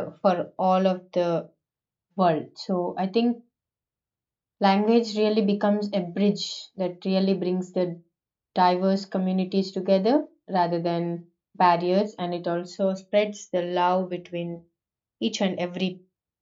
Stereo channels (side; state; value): both; identical; correlation 1.00